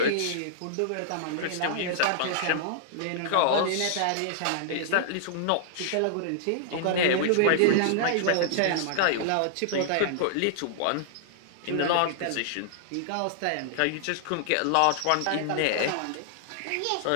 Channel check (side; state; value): both; different; correlation -0.01